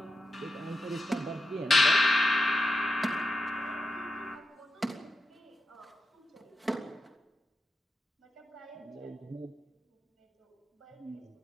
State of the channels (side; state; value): both; normal; correlation 0.89